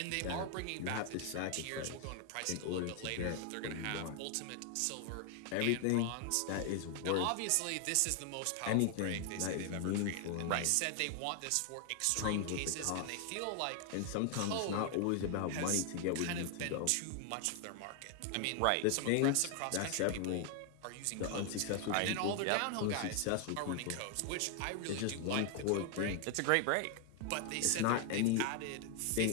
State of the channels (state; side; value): different; both; correlation 0.00